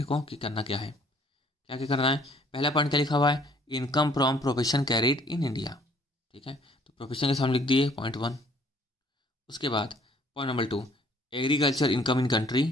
को कि करना क्या है। क्या क्या करना है, पहला पॉइंट क्या लिखा हुआ है, income from profession carried in India. ठीक है, तो प्रोफेशन के सामने लिख दिए पॉइंट 1। उसके बाद point number 2, agriculture income in country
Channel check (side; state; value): both; normal; correlation 0.59